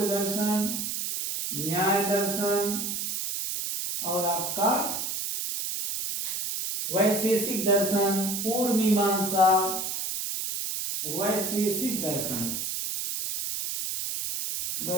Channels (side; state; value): right; noise; hiss, 3 dB below the sound